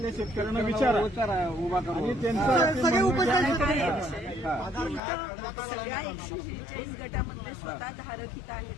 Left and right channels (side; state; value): right; drops out; at 5.0 s